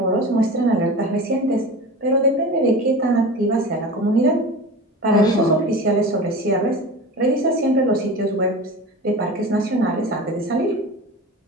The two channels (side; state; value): both; normal; correlation 0.32